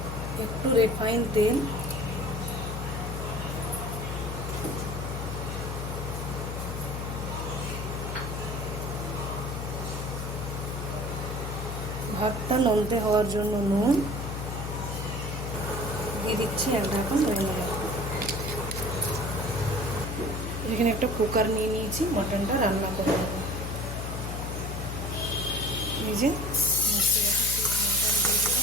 একটু রিফাইন তেল, ভাতটা নলতে হওয়ার জন্য নুন দিয়ে দিচ্ছি। এক ঢাকন ধরে নেব। এখানে একটা কুকার নিয়ে নিয়েছি, মটনটা রান্না করে নেব। এই যে মটন দিয়ে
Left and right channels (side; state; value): left; noise; hum, 4 dB below the sound